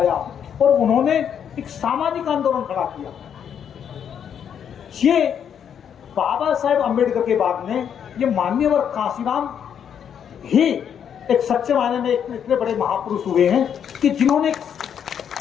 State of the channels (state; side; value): quieter; right; 8.4 dB